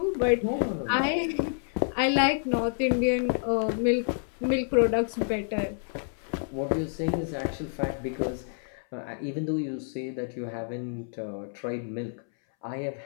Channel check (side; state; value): right; silent; 59 dB below the other